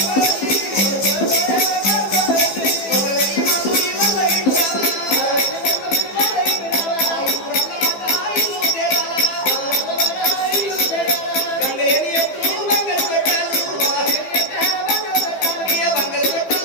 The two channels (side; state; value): right; late; 15 ms